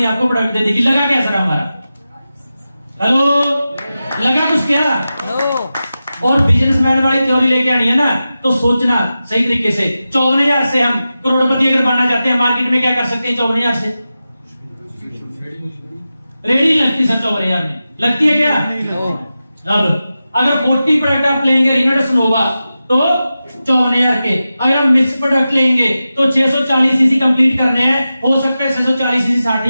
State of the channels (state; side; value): inverted; both; correlation -0.93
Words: आपको प्रोडक्ट दे देगी। लगा क्या सर हमारा? हेलो, लगा कुछ क्या? और बिजनेसमैन वाली थ्योरी लेके आनी है ना, तो सोचना सही तरीके से। 54,000 से हम करोड़पति अगर बनना चाहते हैं, मार्केट में क्या कर सकते हैं? 54,000 से रेडी लगती सर, 54,000 में लगती है क्या? अब अगर 40 प्रोडक्ट आप लेंगे रिनोवेशन होगा तो 54,000 के। अगर हम मिक्स प्रोडक्ट लेंगे तो 640 सीसी कंप्लीट करने हैं। हो सकता है 640 सीसी